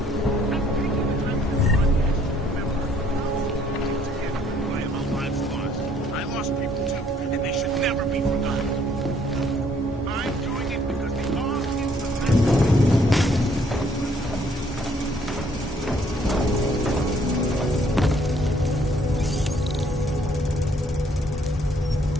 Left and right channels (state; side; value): normal; both; correlation 0.64